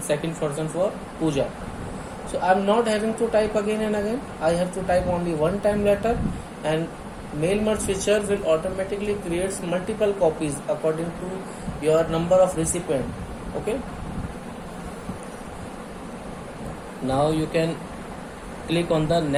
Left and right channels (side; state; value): both; identical; correlation 1.00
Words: second person for Pooja. So I am not having to type again and again. I have to type only one time letter, and mail merge feature will automatically creates multiple copies according to your number of recipient. Okay, now you can click on the